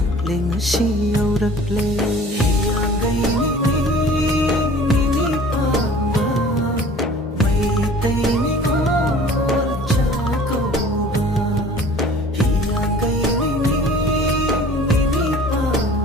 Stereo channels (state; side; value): normal; both; correlation 0.47